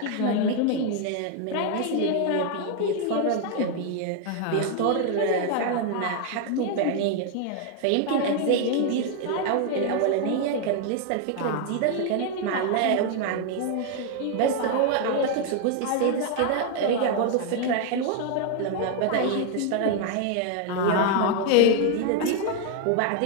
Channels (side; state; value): both; different; correlation 0.00